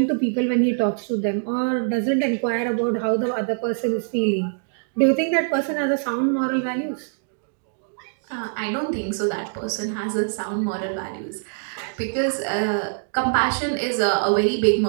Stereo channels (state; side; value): silent; left; digital silence